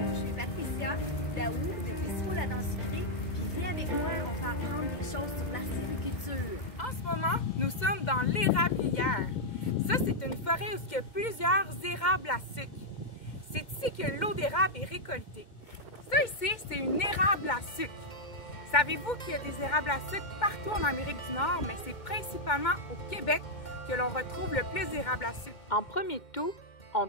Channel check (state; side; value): late; right; 2.1 ms